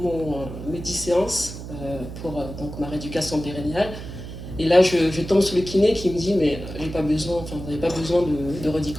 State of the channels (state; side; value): noise; right; hum, 10 dB below the sound